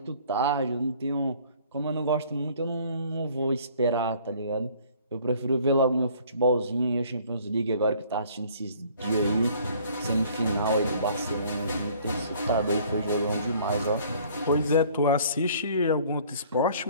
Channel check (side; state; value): both; inverted; correlation -0.55